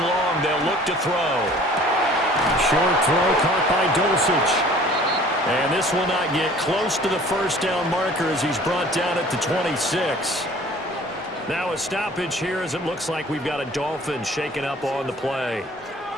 long, they'll look to throw. Short throw caught by Dulcich. And this will not get close to the first down marker as he's brought down at the 26. Now a stoppage here as it looks like we've got a Dolphin shaken up on the play.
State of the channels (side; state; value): both; normal; correlation 0.50